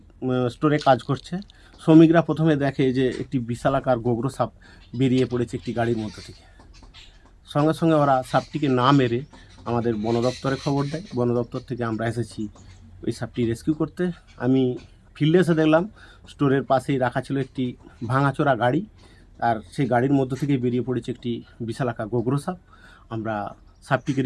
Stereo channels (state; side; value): identical; both; correlation 1.00